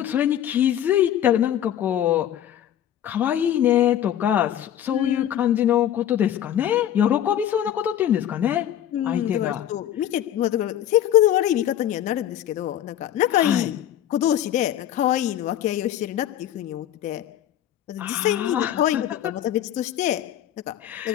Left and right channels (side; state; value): right; quieter; 11.1 dB